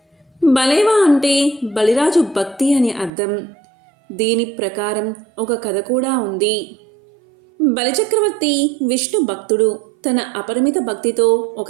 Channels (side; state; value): left; drops out; at 3.1 s